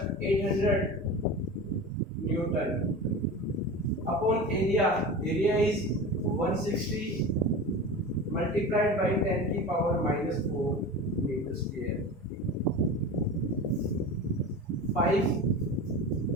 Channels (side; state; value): both; normal; correlation 0.30